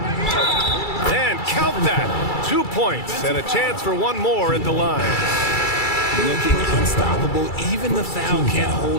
And count that. 2 points and a chance for 1 more at the line. Looking unstoppable. Even the foul can't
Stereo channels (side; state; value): right; late; 2.3 ms